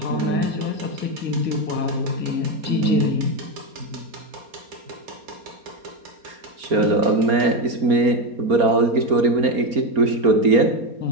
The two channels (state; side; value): late; left; 4.3 ms